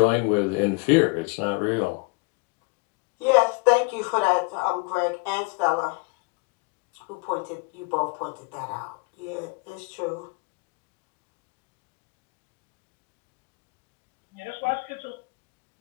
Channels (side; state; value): right; quieter; 30.9 dB